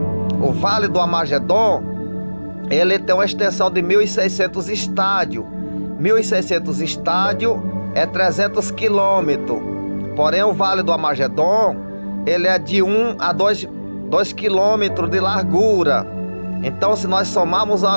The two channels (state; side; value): inverted; both; correlation -1.00